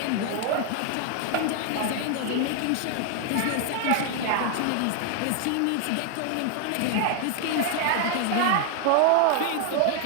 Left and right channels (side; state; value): both; different; correlation 0.00